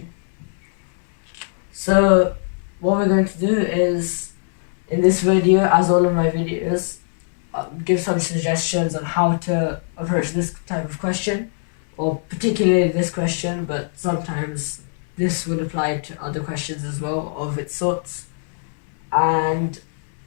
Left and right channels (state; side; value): silent; right; 62 dB below the other